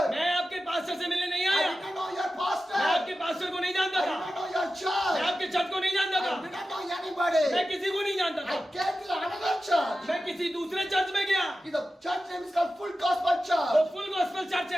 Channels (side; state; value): both; normal; correlation 0.93